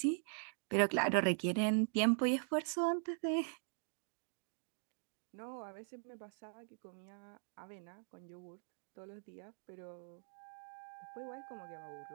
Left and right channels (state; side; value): silent; left; digital silence